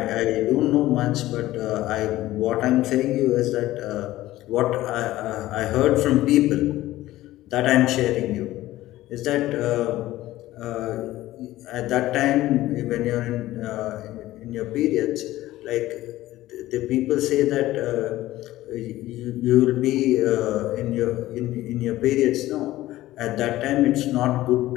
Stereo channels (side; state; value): right; quieter; 16.0 dB